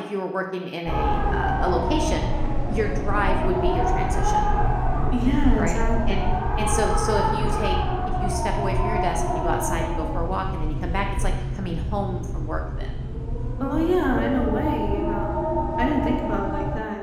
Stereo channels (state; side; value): identical; both; correlation 1.00